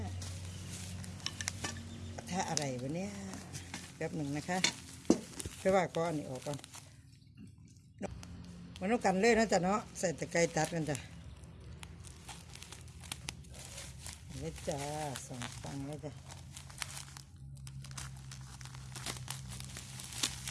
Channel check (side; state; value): both; identical; correlation 1.00